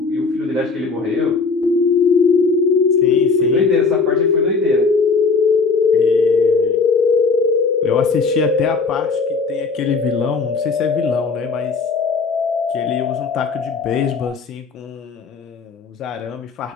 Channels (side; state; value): right; quieter; 4.6 dB